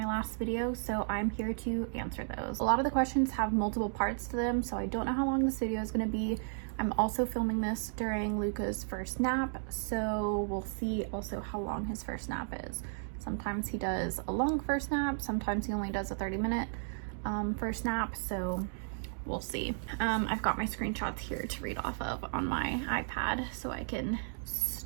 last video, so I'm here to answer those. A lot of the questions have multiple parts to them, so I don't know how long this video is going to be. I'm also filming this during Luca's first nap, so we'll see also how long his first nap is. Sometimes he does a long first nap, sometimes he only does a 30-minute first nap, so we'll see. I've got my screenshots here to read off of on my iPad so I can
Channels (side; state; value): left; silent; digital silence